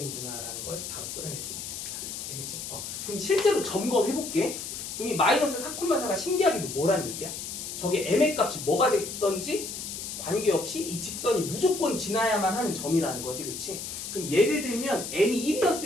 라는 걸 바로 끌어낼 수 있어요. 알겠지? 그럼 실제로 점검해볼게. 그럼 이 마이너스 4,4가 신기하게도 뭐란 얘기야? 저게 m의 값이 뭐가 됐던지 관계없이 이 직선이 무조건 지나야만 하는 점이라는 거지, 그치? 그럼 예를 들면 m이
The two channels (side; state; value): left; noise; hiss, 7 dB below the sound